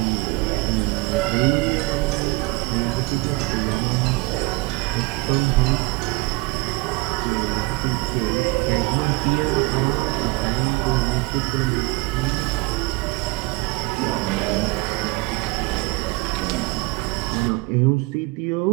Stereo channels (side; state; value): left; quieter; 24.6 dB